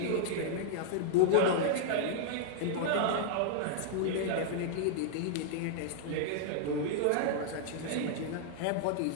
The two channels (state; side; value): different; both; correlation -0.01